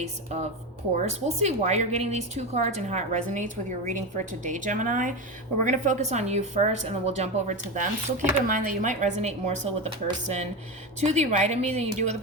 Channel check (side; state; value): both; normal; correlation 0.18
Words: of course. We'll see why you're getting these two cards and how it resonates with your reading for today, Gemini. But we're going to focus on you first, and then we'll jump over to them. So keep in mind that you might resonate more so with the person to the right of me than you do with the